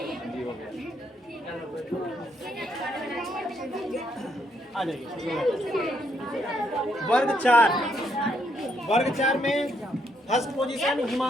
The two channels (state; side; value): normal; both; correlation 0.74